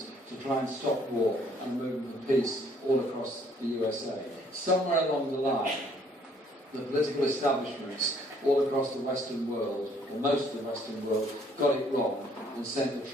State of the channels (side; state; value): both; normal; correlation 0.63